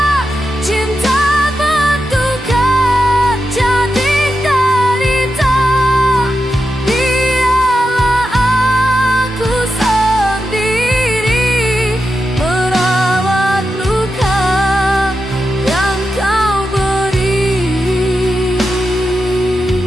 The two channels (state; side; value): normal; both; correlation 0.89